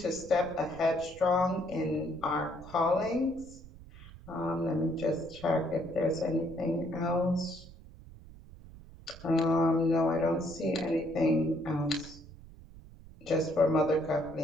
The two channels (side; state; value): right; noise; rumble, 18 dB below the sound